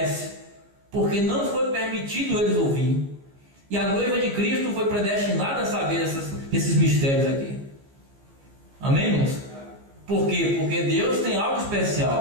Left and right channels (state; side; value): late; left; 15 ms